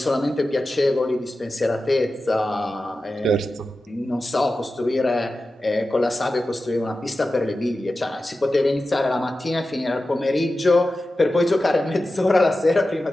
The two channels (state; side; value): normal; both; correlation 0.93